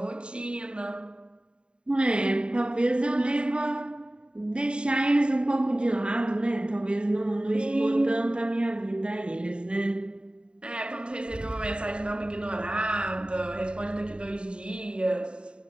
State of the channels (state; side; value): late; left; 0.051 ms